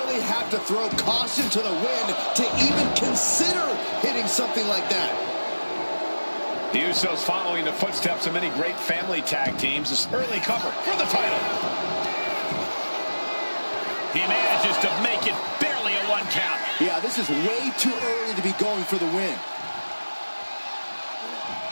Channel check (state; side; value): inverted; both; correlation -1.00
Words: have to throw caution to the wind to even consider hitting something like that. The Usos following the footsteps of many great family tag teams. This early cover for the title. He manages to make it barely a 1 count. Yeah, this is way too early to be going for the win.